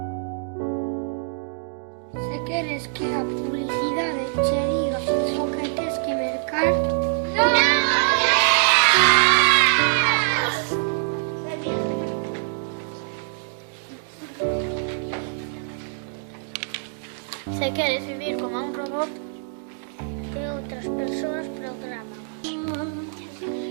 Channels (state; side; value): silent; left; digital silence